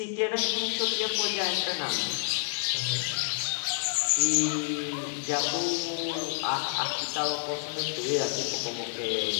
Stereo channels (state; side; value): silent; right; 59 dB below the other